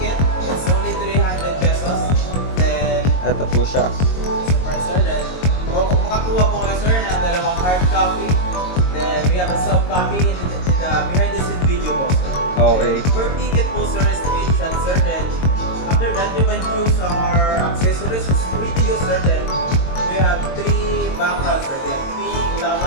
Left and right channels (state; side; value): late; right; 22 ms